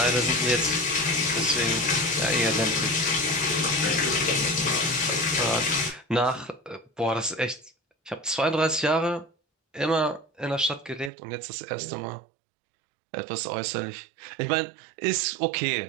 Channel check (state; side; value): drops out; left; at 11.1 s